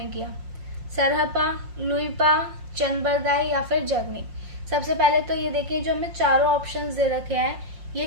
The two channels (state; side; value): late; left; 5.6 ms